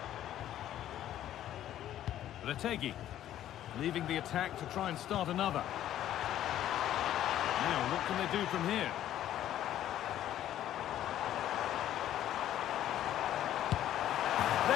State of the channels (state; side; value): quieter; right; 12.1 dB